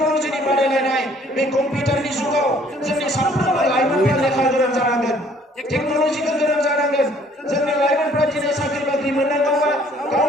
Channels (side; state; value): both; normal; correlation 0.59